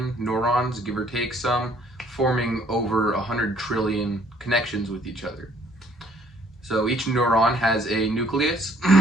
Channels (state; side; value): normal; both; correlation 0.62